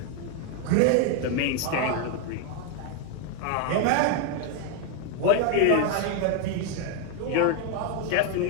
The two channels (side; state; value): both; different; correlation 0.01